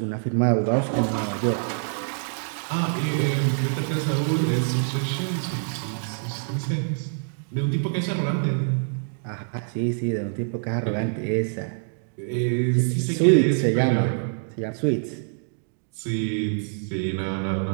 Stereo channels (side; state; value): left; silent; digital silence